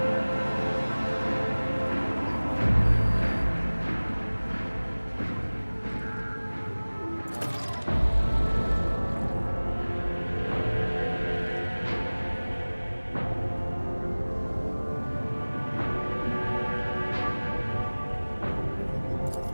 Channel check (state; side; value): inverted; both; correlation -1.00